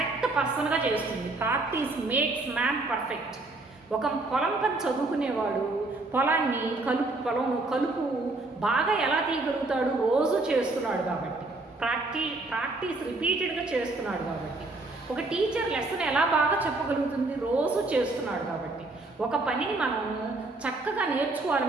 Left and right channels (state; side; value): quieter; left; 3.1 dB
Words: పర్సన్గా చేస్తుంది. Practice makes man perfect. ఒక పొలం పని చదువుకునేవాడు పొలాన్ని కలుపు బాగా ఎలా తీయగలుగుతాడు? రోజు చేస్తున్నాడు కాబట్టి. ప్రాక్టీస్ రిపీటెడ్గా చేస్తున్నాడు కాబట్టి. ఒక టీచర్ లెసన్ ఎలా బాగా చెప్పగలుగుతుంది? రోజు చేస్తున్నాడు కాబట్టి. ఒక పనిని మనం చక్కగా